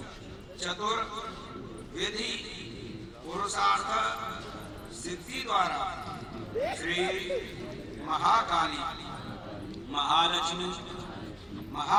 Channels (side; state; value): both; identical; correlation 1.00